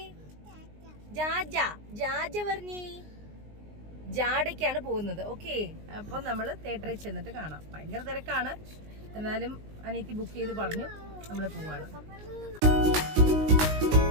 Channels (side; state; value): left; late; 19 ms